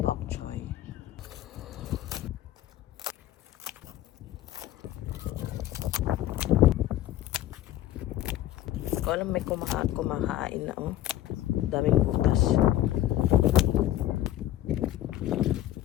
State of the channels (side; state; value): right; quieter; 13.7 dB